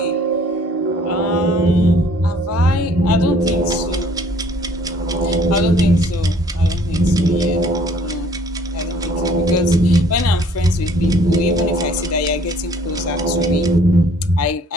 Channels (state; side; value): normal; both; correlation 0.57